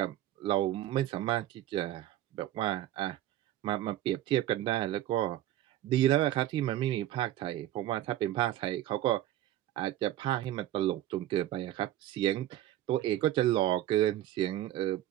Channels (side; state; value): left; quieter; 13.6 dB